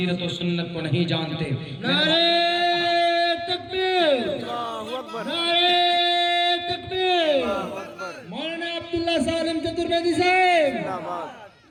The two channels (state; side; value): identical; both; correlation 1.00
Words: و سنت کو نہیں جانتے. نعرہ تکبیر، نعرہ تکبیر. مولانا عبداللہ سالم چترویدی صاحب،